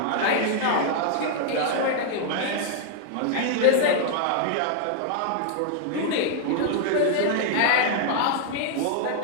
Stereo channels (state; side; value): different; both; correlation -0.01